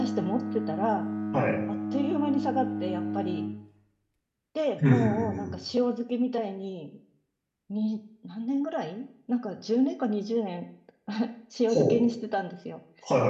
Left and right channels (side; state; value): both; identical; correlation 1.00